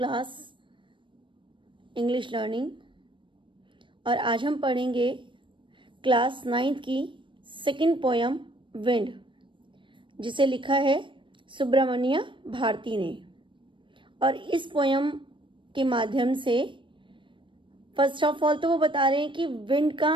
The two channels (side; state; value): left; late; 0.24 ms